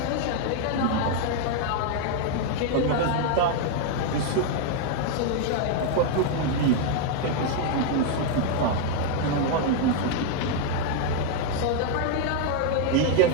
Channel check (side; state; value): both; different; correlation 0.00